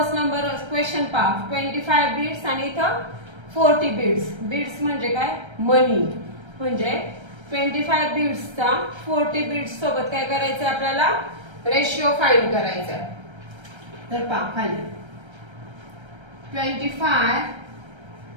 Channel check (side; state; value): left; late; 1.3 ms